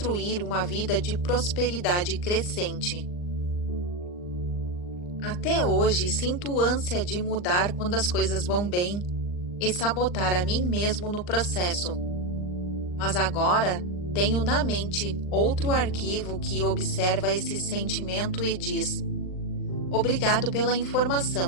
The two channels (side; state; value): right; late; 39 ms